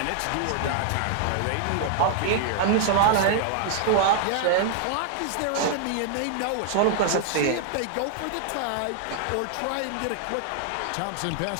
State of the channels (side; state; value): both; different; correlation -0.01